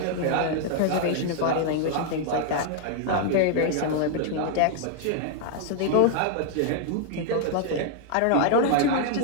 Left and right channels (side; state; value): both; different; correlation 0.00